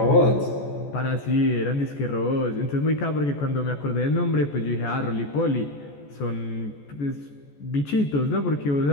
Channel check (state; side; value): late; right; 14 ms